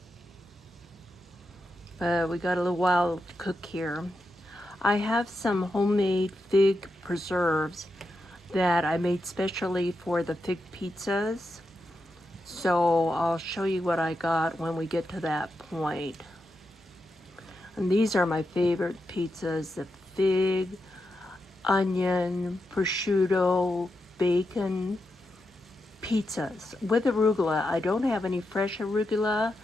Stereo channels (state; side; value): normal; both; correlation 0.87